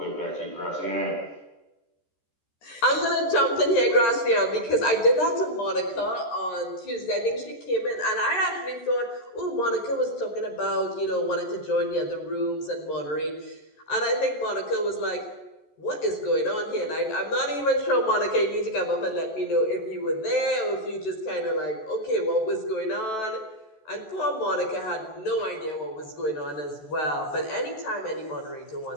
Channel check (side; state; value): right; late; 14 ms